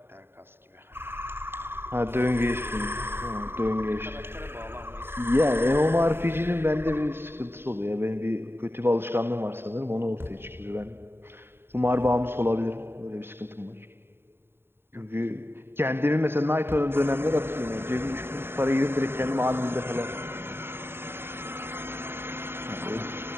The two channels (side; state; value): left; late; 0.11 ms